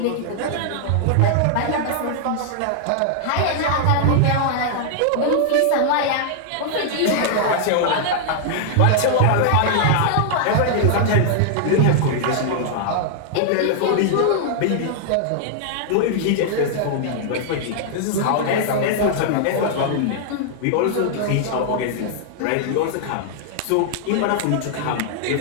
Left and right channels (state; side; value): different; both; correlation 0.00